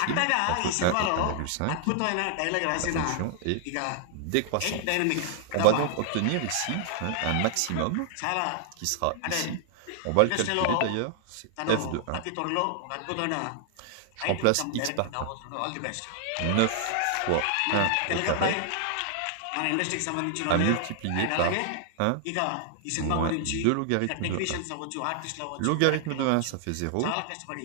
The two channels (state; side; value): different; both; correlation 0.00